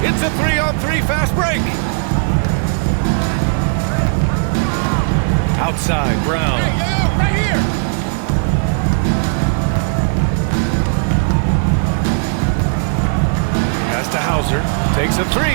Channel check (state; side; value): silent; left; digital silence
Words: It's a 3-on-3 fast break. Outside, Brown. Right here. Pass to Hauser. Takes a